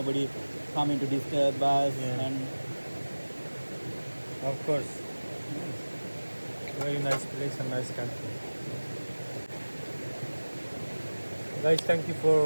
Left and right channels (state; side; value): inverted; both; correlation -1.00